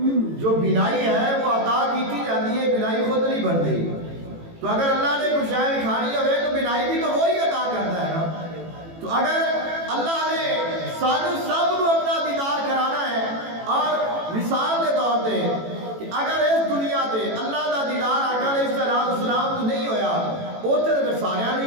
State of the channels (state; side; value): late; left; 18 ms